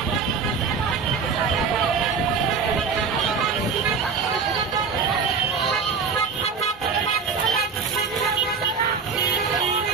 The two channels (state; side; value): quieter; left; 5.4 dB